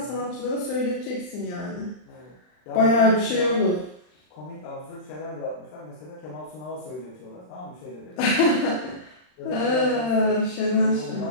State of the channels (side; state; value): right; late; 39 ms